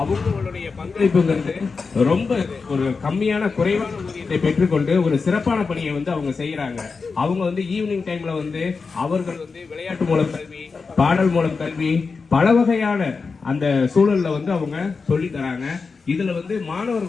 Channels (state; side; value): quieter; right; 4.7 dB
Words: அவங்களுடைய பங்களிப்புங்கிறது ரொம்ப ஒரு கம்மியான குறைவான ஊதியத்தை பெற்றுக்கொண்டு ஒரு சிறப்பான பணியை அவங்க செய்யறாங்க. அவங்க ஈவினிங் டைம்ல அவர்கள் விளையாட்டு மூலம் கல்வி, பாடல் மூலம் கல்வி, பல வகையான அந்த சூழல்ல அவங்க சொல்லி தராங்க. இதுல